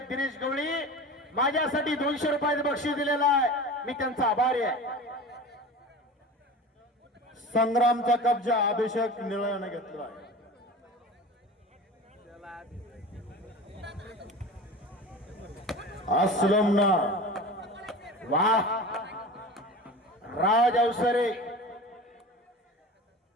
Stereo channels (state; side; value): normal; both; correlation 0.34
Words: दिनेश गवळी माझ्यासाठी 200 रुपयाचं बक्षीस दिलेलं आहे. मी त्यांचा आभारी आहे. संग्रामचा कब्जा अभिषेक निळ्याने घेतला आहे. असलमना वाह राज अवसरे